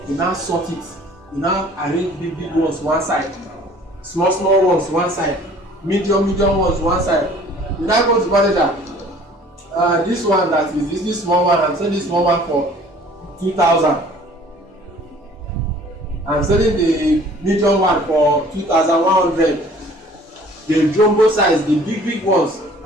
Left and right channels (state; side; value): normal; both; correlation 0.52